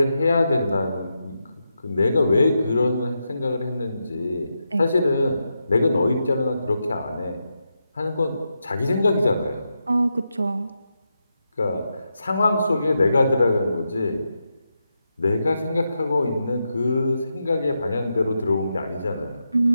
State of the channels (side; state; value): both; inverted; correlation -0.86